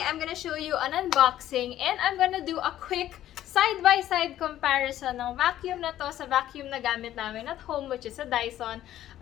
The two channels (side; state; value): right; quieter; 12.7 dB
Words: I'm gonna show you an unboxing and I'm gonna do a quick side-by-side comparison ng vacuum na to sa vacuum na gamit namin at home, which is a Dyson.